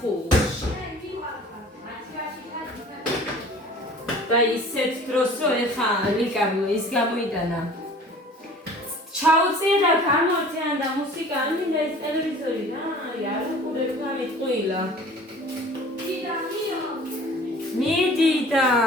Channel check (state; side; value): normal; both; correlation 0.46